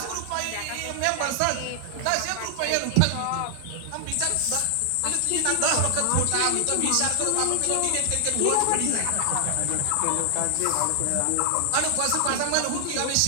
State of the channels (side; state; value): both; different; correlation 0.00